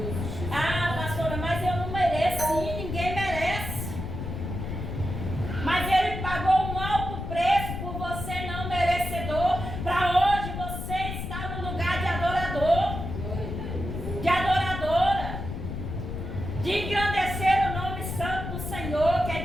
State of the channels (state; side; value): noise; left; rumble, 5 dB below the sound